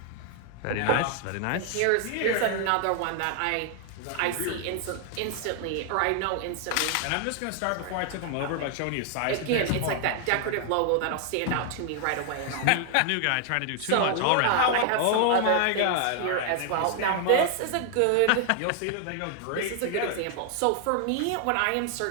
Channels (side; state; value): both; different; correlation 0.00